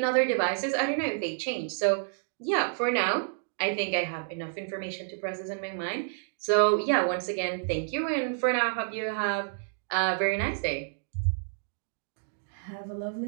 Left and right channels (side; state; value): left; silent; digital silence